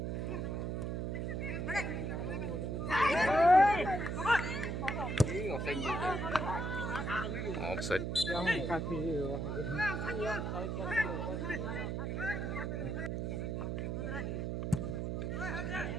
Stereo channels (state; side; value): noise; right; hum, 1 dB below the sound